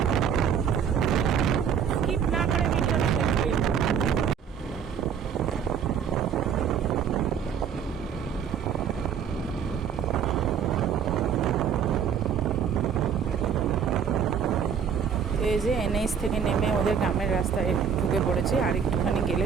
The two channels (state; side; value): quieter; left; 7.5 dB